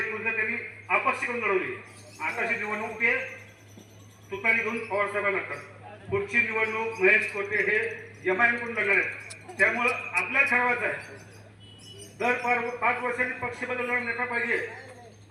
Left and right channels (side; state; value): both; identical; correlation 1.00